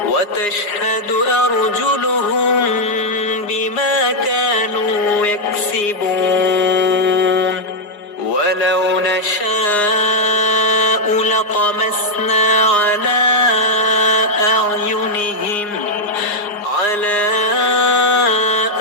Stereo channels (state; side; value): late; right; 4.9 ms